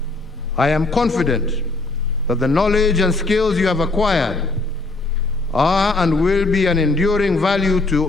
I am confident that the knowledge and skills you have acquired are and will be an enduring value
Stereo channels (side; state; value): right; quieter; 3.3 dB